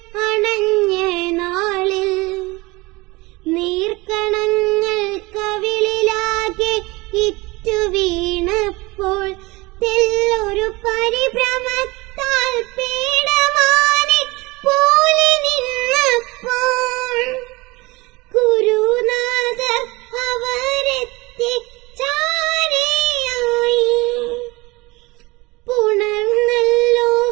അണഞ്ഞ നാളിൽ നീർക്കണങ്ങൾ കവിളിലാകെ ഇറ്റു വീണപ്പോൾ, തെല്ലൊരു പരിഭ്രമത്താൽ പീഡമാനി പോലെ നിന്നപ്പോൾ, ഗുരുനാഥർ അവരെത്തി ചാരയായി. പുണർന്നല്ലോ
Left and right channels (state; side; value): quieter; left; 23.1 dB